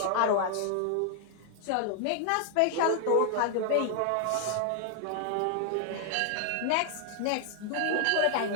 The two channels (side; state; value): both; different; correlation 0.00